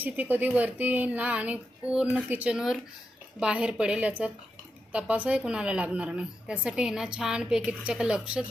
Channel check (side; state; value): both; normal; correlation 0.87